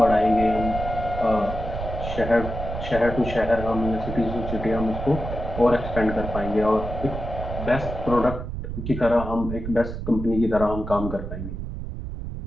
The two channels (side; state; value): right; noise; rumble, 6 dB below the sound